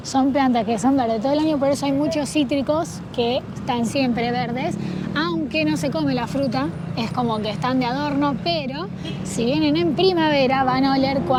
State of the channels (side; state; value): both; identical; correlation 1.00